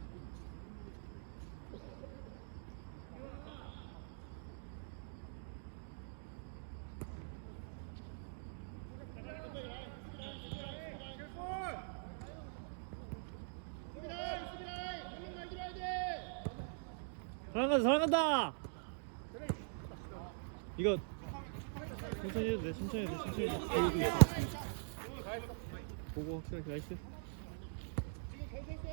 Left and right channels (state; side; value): silent; left; digital silence